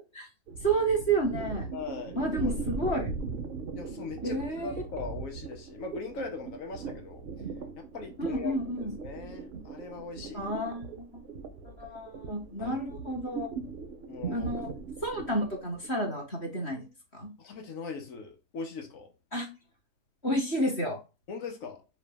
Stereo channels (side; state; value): right; late; 3.1 ms